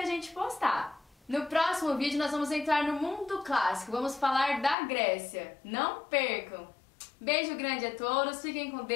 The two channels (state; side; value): drops out; right; at 4.8 s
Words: gente postar. No próximo vídeo nós vamos entrar no mundo clássico, vamos falar da Grécia. Não percam! Beijo grande a todos, fiquem com